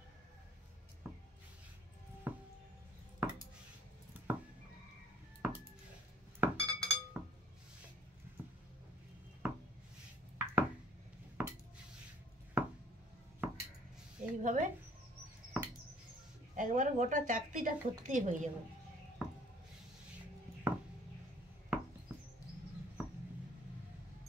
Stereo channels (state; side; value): normal; both; correlation 0.55